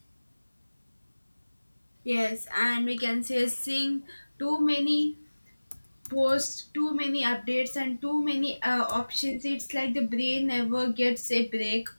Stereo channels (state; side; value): inverted; both; correlation -1.00